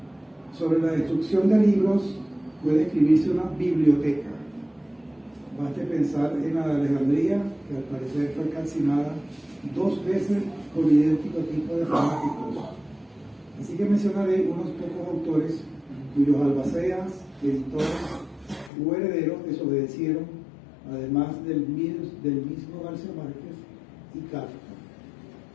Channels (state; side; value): drops out; right; at 18.7 s